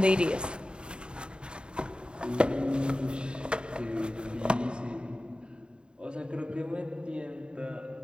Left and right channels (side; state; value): left; late; 0.051 ms